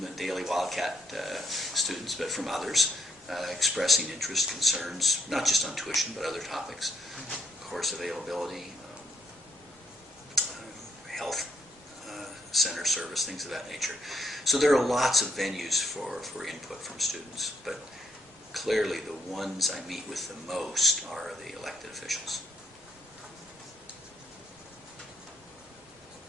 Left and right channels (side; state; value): both; normal; correlation 0.72